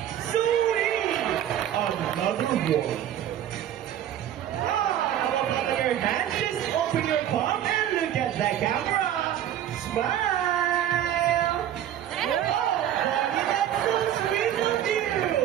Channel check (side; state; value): left; quieter; 11.0 dB